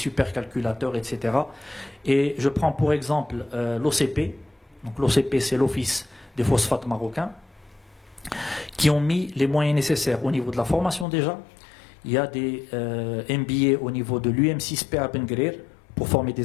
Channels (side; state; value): right; drops out; at 11.1 s